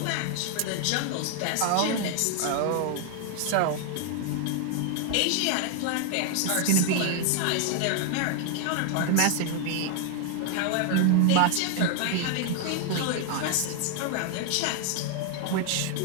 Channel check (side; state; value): both; different; correlation 0.00